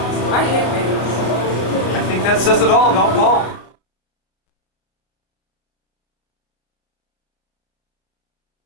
I hate waiting. I think that says it all about Paul.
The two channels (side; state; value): right; late; 33 ms